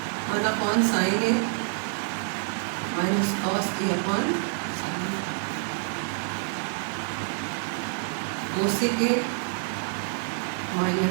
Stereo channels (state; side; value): silent; left; 56 dB below the other